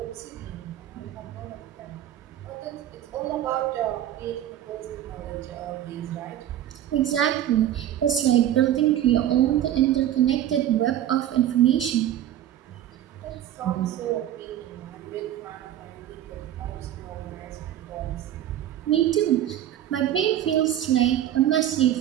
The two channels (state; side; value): quieter; left; 11.7 dB